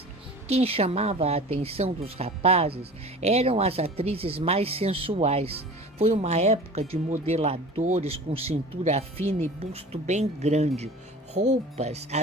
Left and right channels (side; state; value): both; normal; correlation 0.40